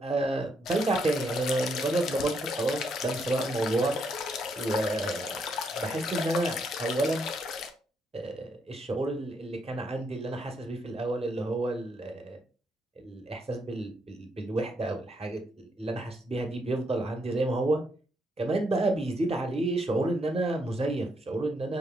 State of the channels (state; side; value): normal; both; correlation 0.76